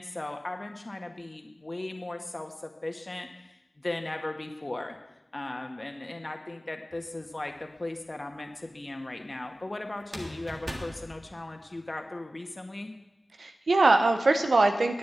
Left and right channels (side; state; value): both; normal; correlation 0.96